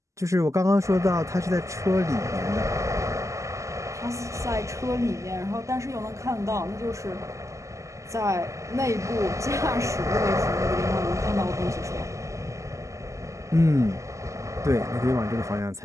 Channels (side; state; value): left; late; 0.15 ms